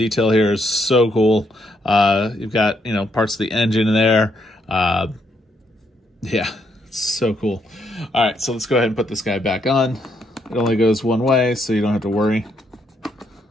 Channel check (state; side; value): normal; both; correlation 0.75